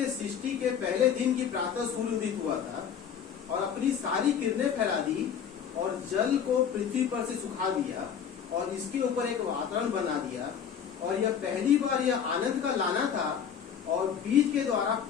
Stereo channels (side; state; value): right; quieter; 8.0 dB